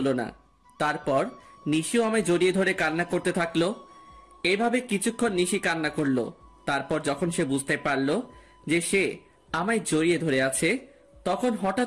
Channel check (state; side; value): identical; both; correlation 1.00